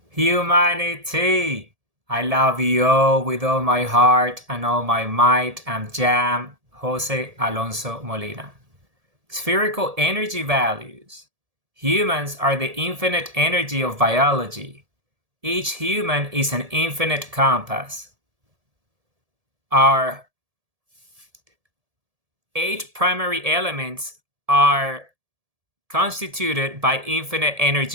Humanity! I love you all with all my heart and all my might. I'm Jam Jose Alonso Molina. Spherical energy values. Humans are the infinite energy of biology. Each human is an infinite compass. Our 8 primary elements are constituted by infinite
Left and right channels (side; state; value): left; late; 1.7 ms